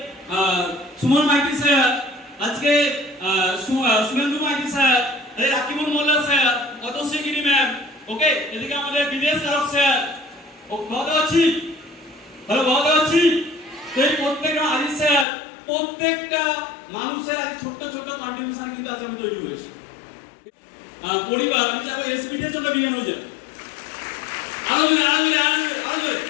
সুমন মাইতি স্যার, আজকে সুমেন্দু মাইতি স্যার, রাকিবুল মোল্লা স্যার, অতশ্রী গিরি ম্যাম, ওকে, এদিকে আমাদের বিদেশ কারক স্যার, বলতে পারছি, হ্যালো বলতে পারছি। এই প্রত্যেকটা আজিজ স্যার, প্রত্যেকটা মানুষের আজ ছোট্ট ছোট্ট কন্ট্রিবিউশন কিন্তু আজ আমি তৈরি করেছি। পরিবার, আমি চাইবো এসপিডিএর জন্য বিজ্ঞান হয়ে যায়। আরো জোরে, আরো জোরে, আরো জোরে, আরো জোরে,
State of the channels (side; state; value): right; drops out; at 15.2 s